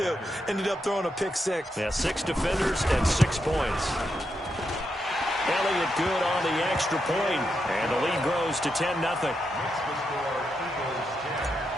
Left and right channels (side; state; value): both; normal; correlation 0.84